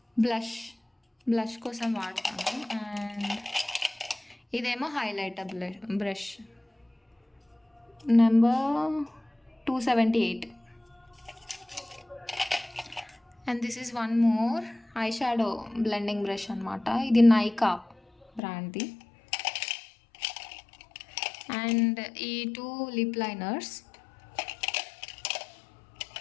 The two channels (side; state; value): right; drops out; at 18.4 s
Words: బ్లష్ కోసం వాడతాను. అండ్ ఇదేమో highlighter brush, number 278. And this is one more eye shadow blending brush అనమాట. ఇది నైకా బ్రాండ్ది. అండ్ ఈ 2 లిప్ లైనర్స్.